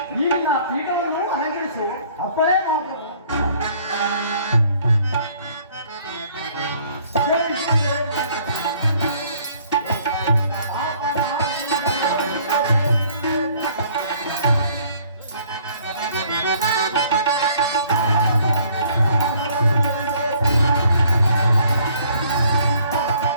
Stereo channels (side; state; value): both; inverted; correlation -0.60